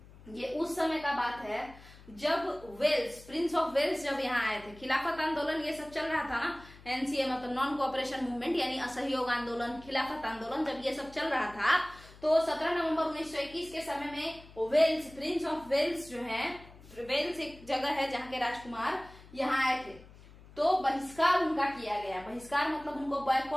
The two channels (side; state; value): left; noise; hum, 21 dB below the sound